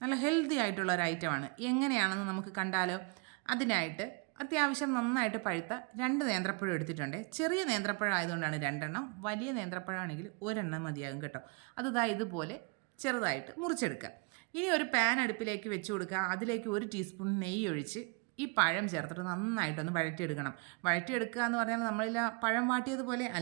നല്ല ഹെൽത്തി ആയിട്ടുള്ള ഒരു ഐറ്റമാണ്. എങ്ങനെയാണെന്ന് നമുക്ക് കണ്ടാലോ? അതിനായിട്ട് അത്യാവശ്യം നന്നായിട്ട് പഴുത്ത 2 നേന്ത്രപ്പഴം എടുത്തിട്ടുണ്ട്. ചെറിയ നേന്ത്രപ്പഴം ആയതുകൊണ്ടാണ് 2 എണ്ണം, വലിയ നേന്ത്രപ്പഴമാണെങ്കിൽ 1 എണ്ണം മതിയാകും കേട്ടോ. അത് ഇതുപോലെ ചെറുതായിട്ട് മുറിച്ചെടുക്കുക. ഇനി ഒരു പാൻ അടുപ്പിലേക്ക് വെച്ച് കൊടുക്കുക. അതിലേക്ക് 1 ടീസ്പൂൺ നെയ്യ് ഒഴിച്ച് ഈ പഴം ചേർത്തിട്ട് നന്നായിട്ടൊന്ന് വഴറ്റിയെടുക്കണം. വഴറ്റിയെടുക്കുക എന്ന് പറഞ്ഞാൽ നമ്മളിൽ പഴം വാട്ടിയതുപോലെ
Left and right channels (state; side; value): quieter; left; 31.7 dB